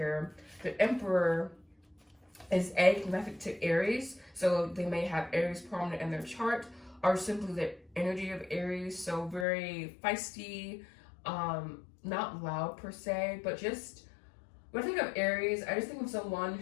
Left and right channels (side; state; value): right; drops out; at 9.5 s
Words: the Emperor is connected to Aries, so they may have Aries prominent in their chart, or simply the energy of Aries, so very feisty, not loud per se, but just, when I think of Aries, I just think of someone